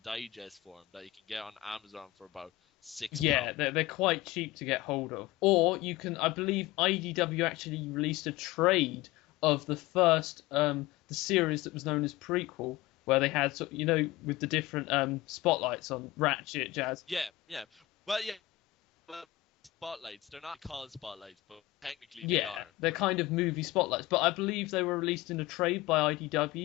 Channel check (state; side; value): quieter; right; 16.7 dB